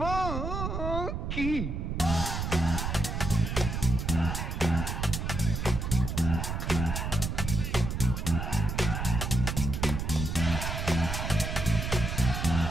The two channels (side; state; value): right; noise; rumble, 3 dB below the sound